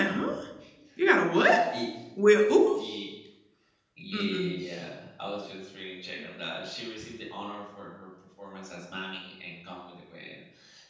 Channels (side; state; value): both; identical; correlation 1.00